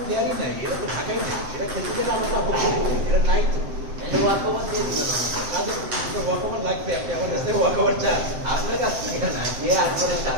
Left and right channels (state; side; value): late; left; 7.8 ms